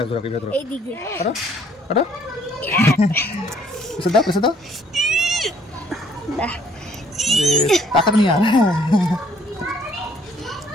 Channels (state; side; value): normal; both; correlation 0.62